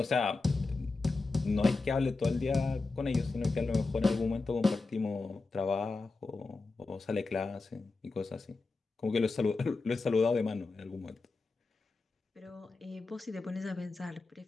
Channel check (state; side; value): quieter; right; 3.7 dB